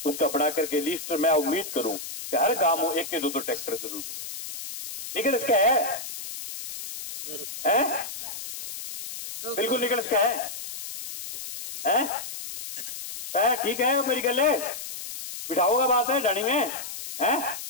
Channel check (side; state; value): left; noise; hiss, 9 dB below the sound